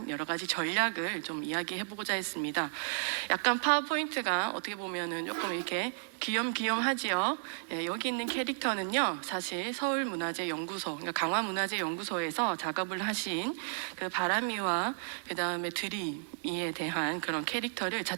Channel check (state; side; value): silent; left; digital silence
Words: 여러 가지 전략을 좀 이야기해보고자 했습니다. 약간 파워포인트가 어떻게 보면은 조금 이렇게 귀염귀염하지요. 예, 여기 있는 캐릭터는요, 사실 서울문화재연구소, 그러니까 강화문화재연구소에서 작업을 하신 그 바람이와 그 다음에 드림이에 대한 그런 캐릭터를